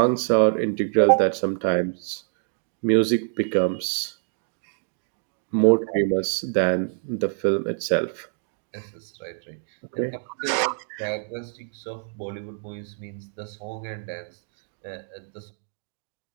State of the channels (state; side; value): silent; left; digital silence